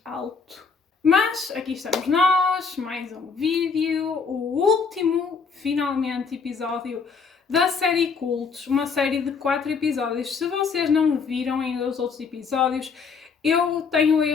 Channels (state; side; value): quieter; right; 5.3 dB